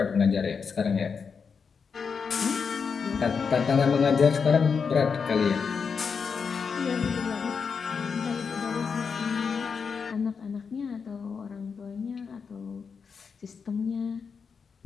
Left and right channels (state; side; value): quieter; right; 5.8 dB